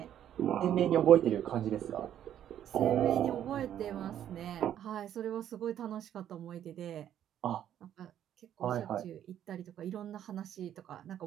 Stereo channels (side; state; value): left; quieter; 10.6 dB